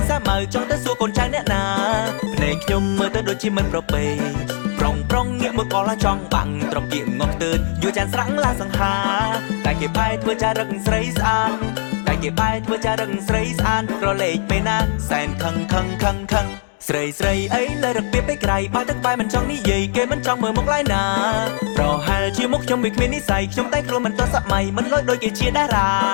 សាម៉ៅចង់ទៅសួរកូនចៅអ្នកណាភ្នែកខ្ញុំមើលទៅដូចជាមិនប្រពៃប្រុងងាកមើលក៏ឡាចង់បាំងត្រកៀកងក់ទើតយូរចានស្រាំងឡាសង្ហាតែគេបែរធ្វើចារឹកស្រីស្អាតតែគេបែរធ្វើចារឹកស្រីស្អាតរលេកពេលណាសែនខឹងស្រីអីលើរកពីពេកក្រៃបើទឹកបែមិនចង់និយាយគេមិនចង់មើលមុខឡើយណាប្រហែលជាមុខខ្ញុំវាគ្មាននិស័យខ្ញុំតែខ្លួនមិនទាន់សម័យមិនលយដូចគេជាតារា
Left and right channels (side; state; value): right; silent; digital silence